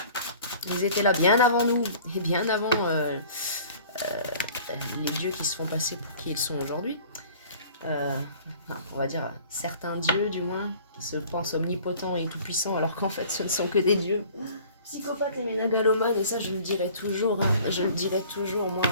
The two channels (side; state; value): both; inverted; correlation -0.49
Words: Ils étaient là bien avant nous et bien avant les dieux qui se font passer pour qui ils sont aujourd'hui. On va dire certains dieux du moins qui se pensent omnipotents et tout-puissants alors qu'en fait ce ne sont que des dieux psychopathes et ménagalomanes, et ça je le dirai toujours. Hein. Je le dirai toujours, moi